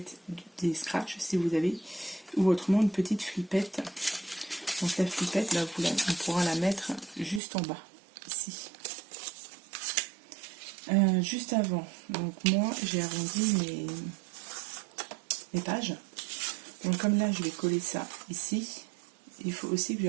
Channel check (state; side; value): drops out; left; at 7.4 s